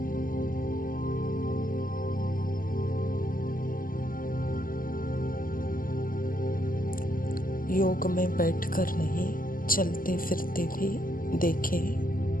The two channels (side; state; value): right; late; 0.41 ms